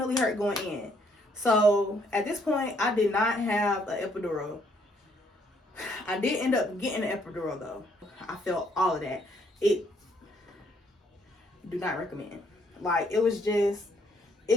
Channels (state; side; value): normal; both; correlation 0.69